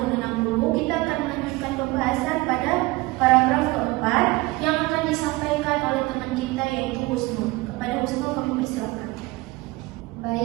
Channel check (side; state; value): left; quieter; 21.4 dB